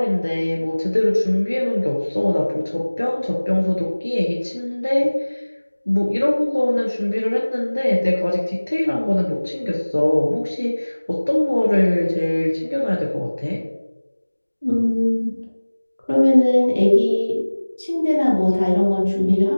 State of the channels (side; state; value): both; inverted; correlation -1.00